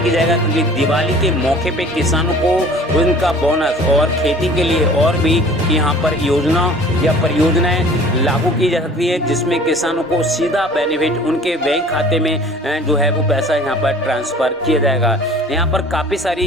जाएगा, क्योंकि दिवाली के मौके पे किसानों को उनका बोनस और खेती के लिए और भी यहाँ पर योजना या परियोजनाएं लागू की जा सकती है, जिसमें किसानों को सीधा बेनिफिट उनके बैंक खाते में जो है वो पैसा यहाँ पर ट्रांसफ़र किया जाएगा। यहाँ पर काफ़ी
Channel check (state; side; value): normal; both; correlation 0.47